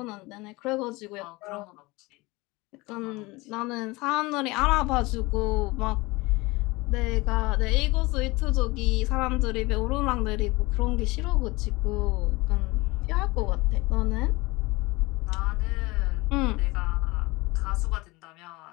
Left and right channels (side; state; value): right; quieter; 23.0 dB